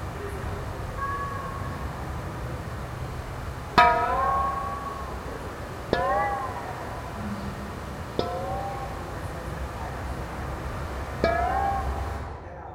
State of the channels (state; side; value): identical; both; correlation 1.00